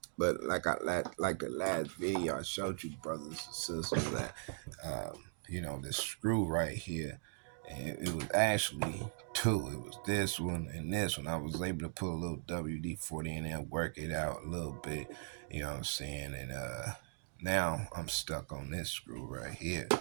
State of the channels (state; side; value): silent; left; digital silence